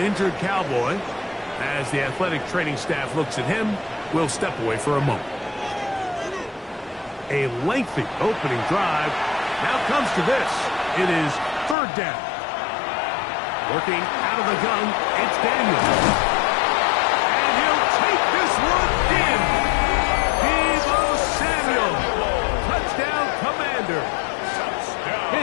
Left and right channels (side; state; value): right; drops out; at 11.8 s